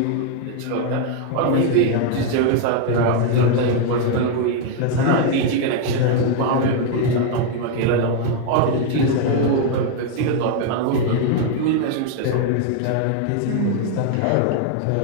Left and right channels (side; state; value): both; different; correlation 0.01